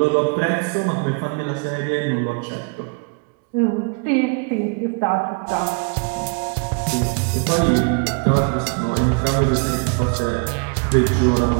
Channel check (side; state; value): left; quieter; 33.9 dB